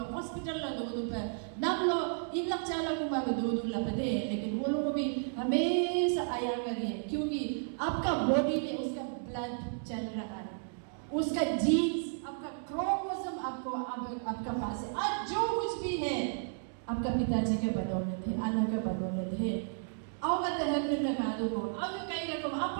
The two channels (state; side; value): silent; left; digital silence